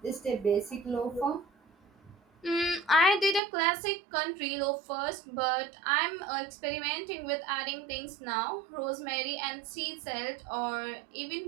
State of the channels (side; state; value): left; drops out; at 3.4 s